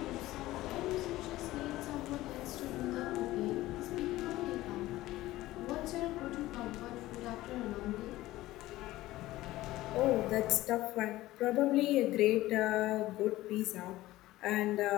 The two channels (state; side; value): quieter; right; 16.7 dB